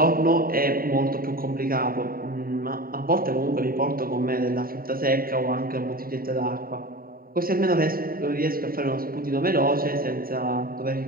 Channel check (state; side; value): late; left; 0.43 ms